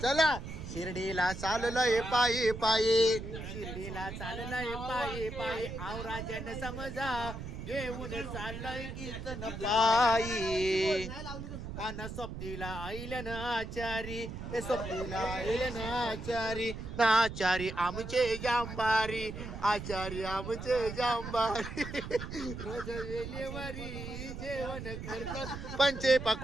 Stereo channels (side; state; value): right; noise; rumble, 8 dB below the sound